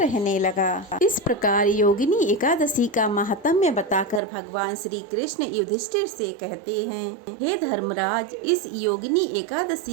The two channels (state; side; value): drops out; left; at 4.2 s